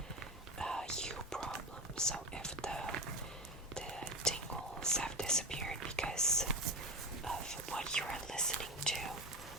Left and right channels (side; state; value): both; normal; correlation 0.18